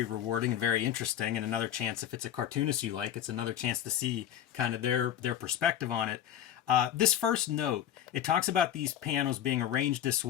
rewarding and very interesting, and another chance, if it's a cartoonist you like, it's another chance to see kind of their perspective on it. This first note, it talks about these panels being arranged this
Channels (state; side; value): quieter; right; 10.8 dB